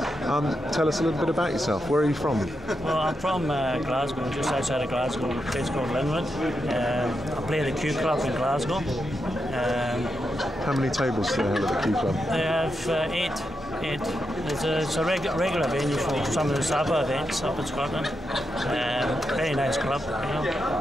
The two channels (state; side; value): normal; both; correlation 0.85